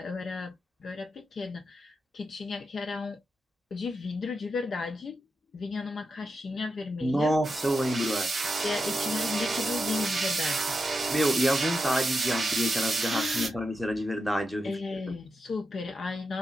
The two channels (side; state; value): both; normal; correlation 0.87